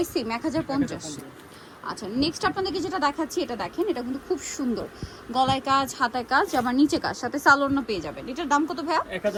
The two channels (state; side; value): identical; both; correlation 1.00